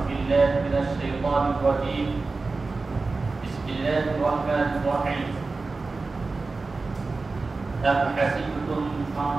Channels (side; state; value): left; quieter; 3.8 dB